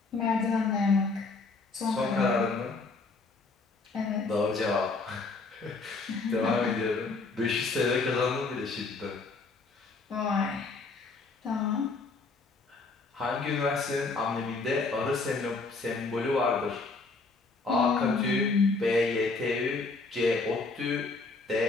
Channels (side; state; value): right; quieter; 3.9 dB